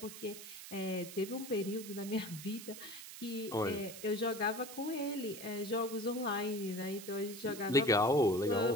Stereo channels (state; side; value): noise; right; hiss, 12 dB below the sound